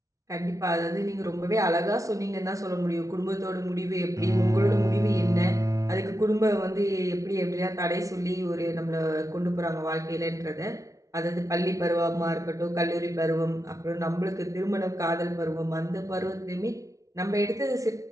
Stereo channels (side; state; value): left; late; 0.16 ms